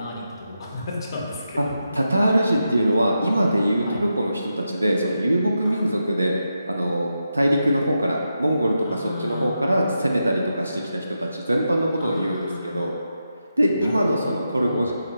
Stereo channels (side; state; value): both; inverted; correlation -0.87